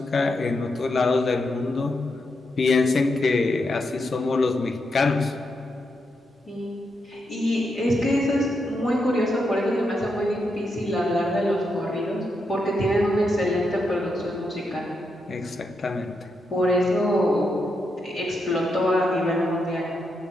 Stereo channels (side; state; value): both; normal; correlation 0.83